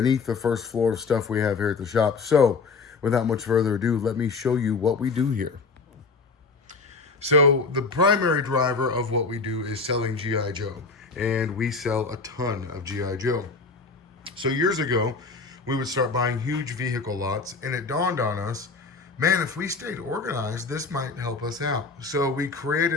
the first floor of stuff we have here at the shop. So without much further ado, let me show you what we do here. So the primary driver of what we do is selling G.I. Joe, and we sell a ton of G.I. Joe. So years ago, we would start buying huge vehicle lots, and it dawned on us, man, if we stayed organized, this might help us out. So we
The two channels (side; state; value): right; quieter; 4.3 dB